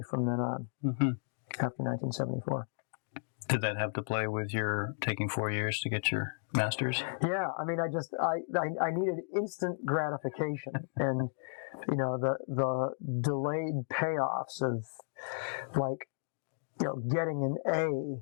from then on, after 1974. Did that have to play with your taking 4 years to get your Masters? Yeah, I mean, I needed instant gratification, and the delayed payoffs of, like, getting an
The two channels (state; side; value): silent; right; digital silence